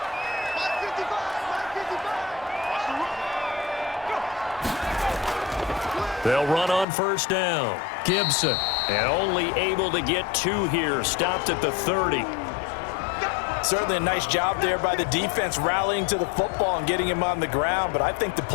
They'll run on 1st down. Gibson, and only able to get 2 here. Stopped at the 30. Certainly a nice job there by the defense rallying to the football and getting him on the ground, but I think the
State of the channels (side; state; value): right; drops out; at 6.9 s